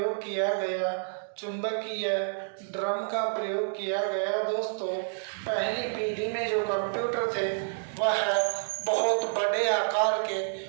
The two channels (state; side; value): silent; left; digital silence